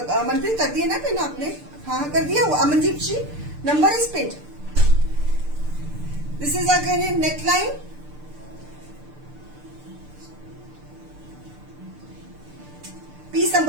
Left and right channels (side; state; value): left; late; 6.7 ms